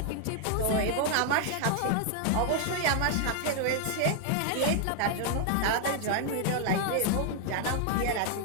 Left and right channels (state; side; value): different; both; correlation 0.00